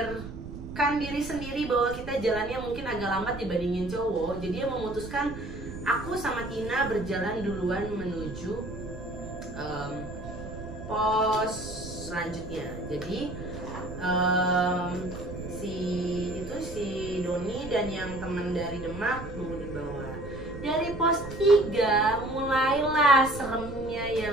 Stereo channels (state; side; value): noise; right; rumble, 11 dB below the sound